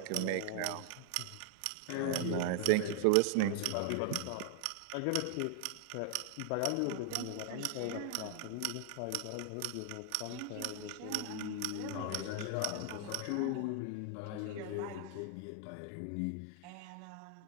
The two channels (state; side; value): different; both; correlation 0.00